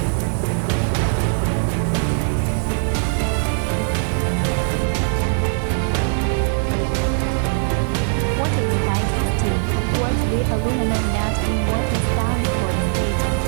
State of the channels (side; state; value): left; silent; digital silence